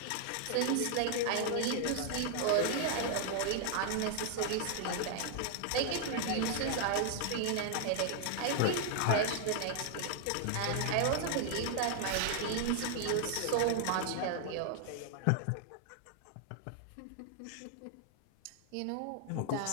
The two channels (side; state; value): both; different; correlation 0.00